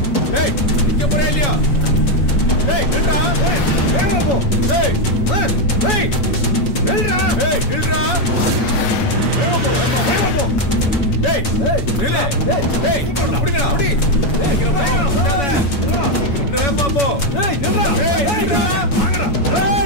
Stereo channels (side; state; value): right; late; 7.1 ms